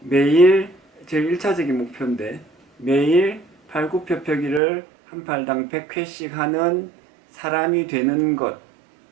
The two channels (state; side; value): drops out; left; at 4.6 s